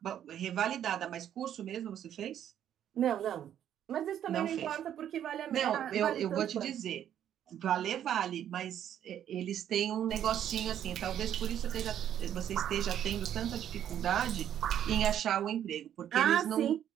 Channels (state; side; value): quieter; left; 10.2 dB